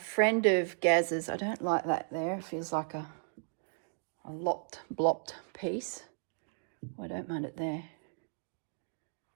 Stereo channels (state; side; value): silent; left; digital silence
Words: of Gaz's, I don't like that there, it feels like a blopped piece. I don't mind it there.